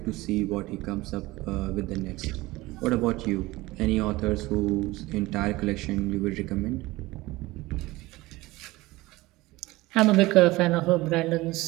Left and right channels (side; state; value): left; quieter; 19.8 dB